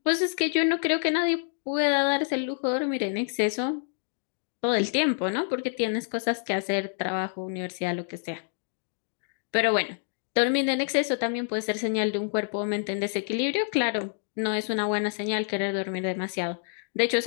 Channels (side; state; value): right; silent; digital silence